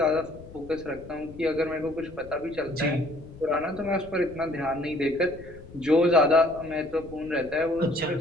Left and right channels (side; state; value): left; noise; rumble, 18 dB below the sound